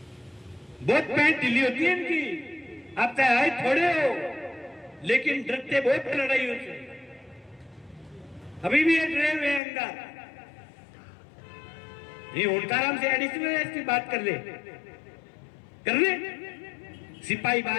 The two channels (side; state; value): right; drops out; at 9.6 s